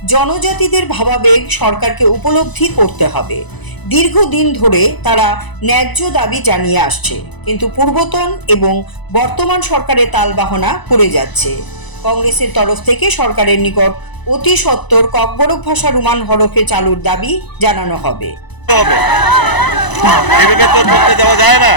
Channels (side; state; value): right; late; 1.0 ms